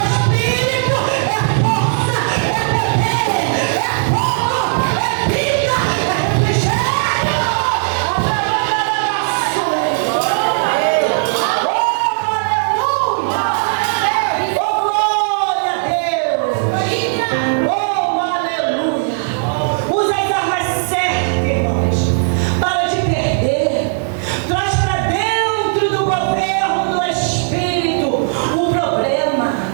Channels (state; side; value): silent; left; digital silence